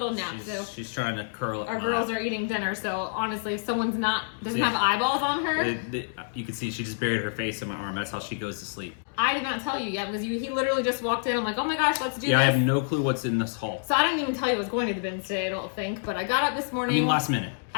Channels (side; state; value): right; silent; digital silence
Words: nap. She's trying to curl up. Our girls are eating dinner, so honestly, if someone's doesn't have eyeballs on her. You can see she just buried her face in my arm. That's how she goes to sleep. I did not tell you yet because he literally just walked in. I'm like, oh my gosh, let's do this. Yeah, I have no clue what's in this haul. So I didn't even tell you I was going to the bins today, I don't think. But I got up this morning. I mean, last minute.